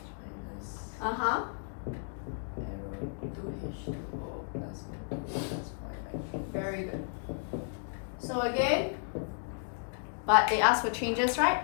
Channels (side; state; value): right; silent; digital silence